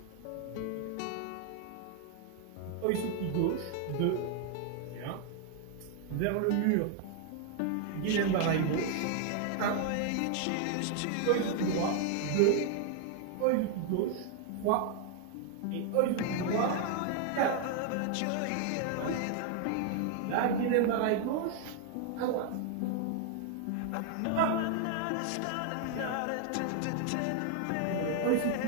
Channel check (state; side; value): different; both; correlation 0.00